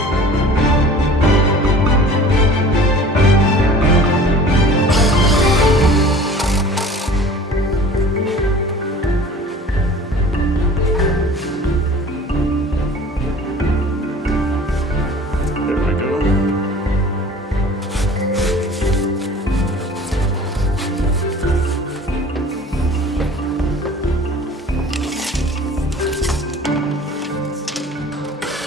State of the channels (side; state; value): both; normal; correlation 0.45